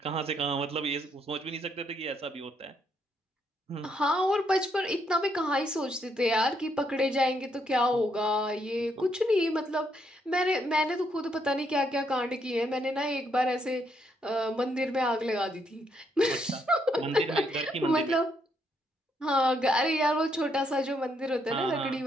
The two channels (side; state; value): both; normal; correlation 0.75